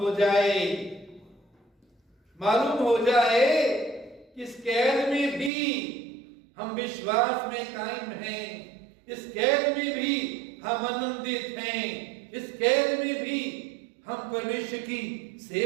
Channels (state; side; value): drops out; left; at 5.5 s